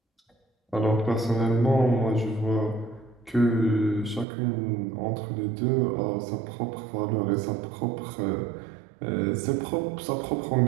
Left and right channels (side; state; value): left; drops out; at 4.2 s